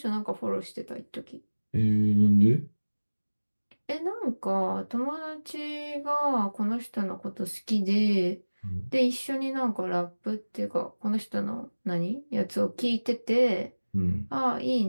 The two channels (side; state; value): both; inverted; correlation -1.00